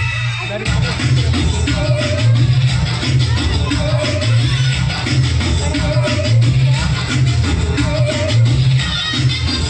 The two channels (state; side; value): identical; both; correlation 1.00